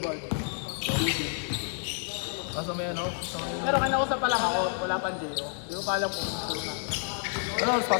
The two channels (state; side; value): silent; right; 58 dB below the other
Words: Kaso may ano? Pero kinausap pa lang ako, wala pang Jero. Hindi ko pa alam kung gusto na. Ano oras